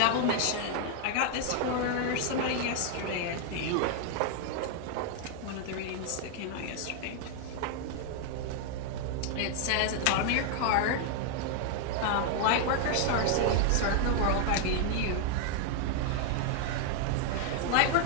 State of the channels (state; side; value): different; both; correlation 0.00